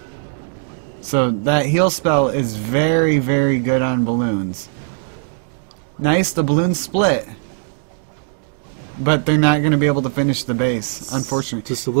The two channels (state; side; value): silent; left; digital silence